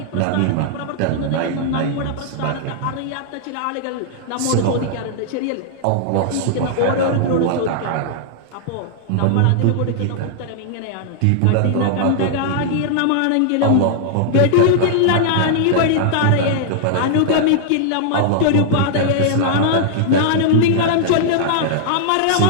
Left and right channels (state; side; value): different; both; correlation -0.01